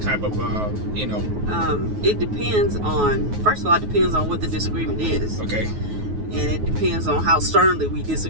of It depends on. First of all, it depends on what the disagreement is. Okay. And it depends on how sternly we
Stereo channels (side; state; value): left; late; 9.4 ms